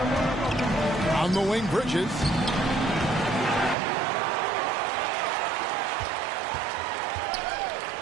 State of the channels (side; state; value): left; drops out; at 3.8 s